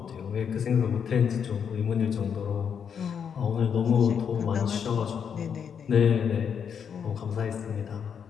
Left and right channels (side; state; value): right; quieter; 7.4 dB